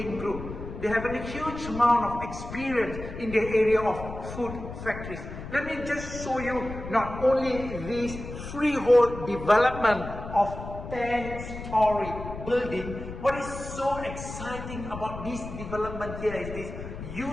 Group. They have a huge amount of experience in the area of food factories. Let me just show you not only this freehold development of 10-story building. What is so exciting about this development here is this.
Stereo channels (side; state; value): left; noise; rumble, 10 dB below the sound